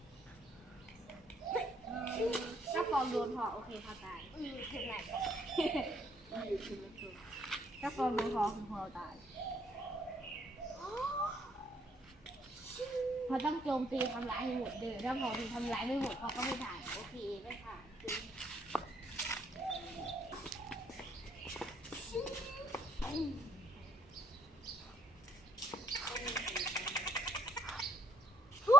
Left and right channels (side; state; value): both; normal; correlation 0.68